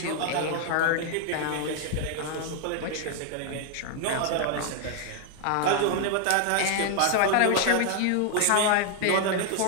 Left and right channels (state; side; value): different; both; correlation 0.00